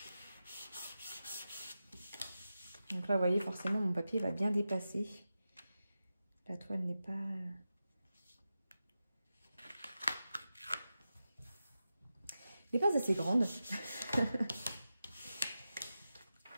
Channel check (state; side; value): inverted; both; correlation -0.92